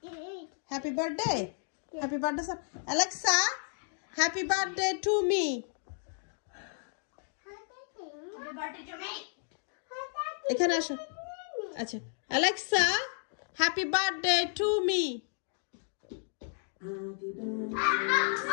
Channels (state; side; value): silent; right; 56 dB below the other